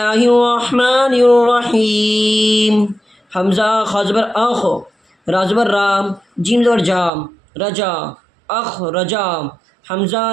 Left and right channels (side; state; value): left; drops out; at 7.1 s